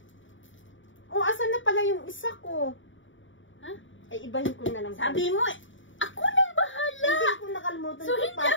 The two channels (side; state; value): right; late; 0.56 ms